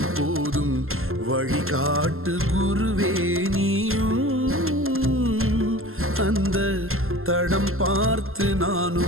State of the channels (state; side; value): late; left; 0.62 ms